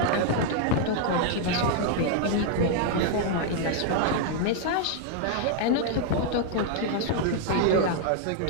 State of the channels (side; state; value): both; different; correlation 0.00